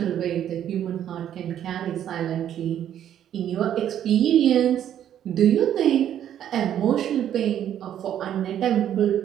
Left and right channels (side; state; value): left; quieter; 10.4 dB